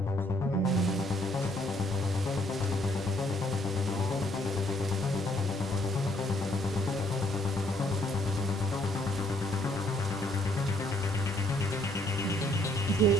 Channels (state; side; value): normal; both; correlation 0.67